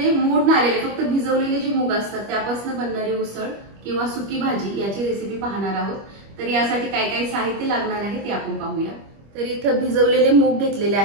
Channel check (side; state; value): left; late; 25 ms